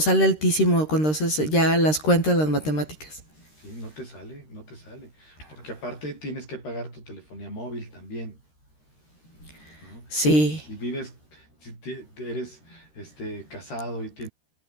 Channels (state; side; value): late; right; 13 ms